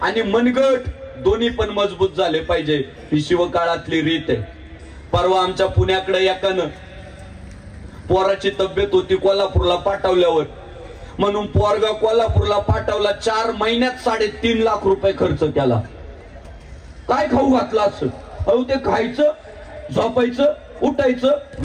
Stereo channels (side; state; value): both; identical; correlation 1.00